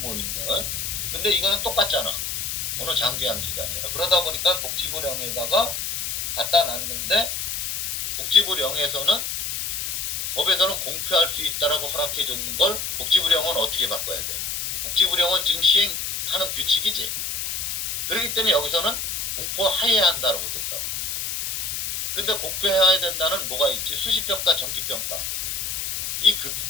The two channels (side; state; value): left; noise; hiss, 2 dB below the sound